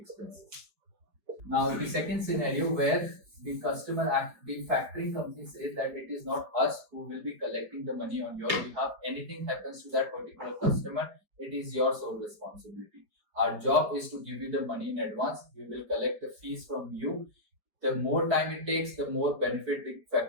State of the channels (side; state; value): left; late; 4.8 ms